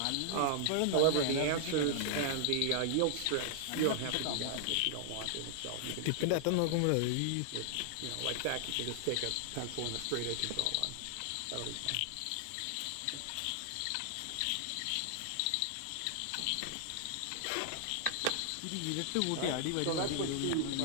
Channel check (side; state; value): both; different; correlation -0.01